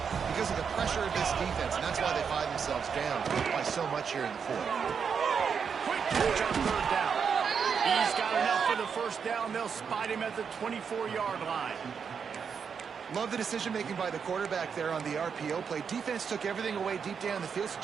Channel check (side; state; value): left; quieter; 6.5 dB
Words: because of the pressure of this defense, and that's why they find themselves down by so much here in the fourth. Quick catch on third down. He's got enough for the first down. They'll spot him at the 24-yard line. Love the decision-making by the quarterback there on the RPO play. Defense took everything away deep down the field, so